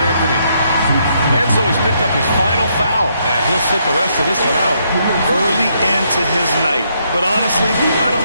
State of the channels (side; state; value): both; inverted; correlation -0.74